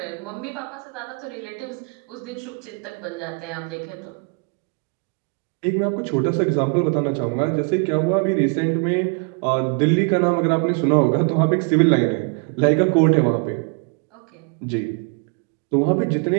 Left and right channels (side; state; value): left; quieter; 34.5 dB